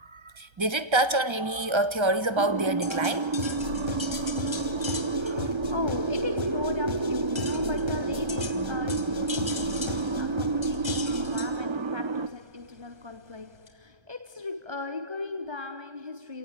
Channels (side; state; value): left; late; 1.3 ms